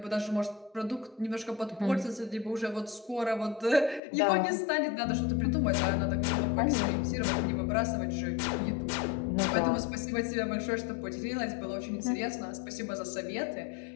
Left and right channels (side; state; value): right; drops out; at 4.0 s